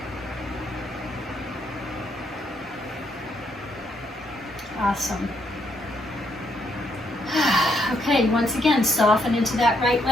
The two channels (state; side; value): normal; both; correlation 0.74